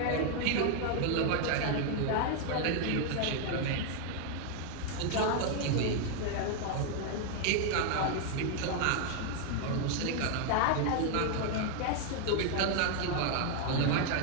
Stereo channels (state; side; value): different; both; correlation 0.00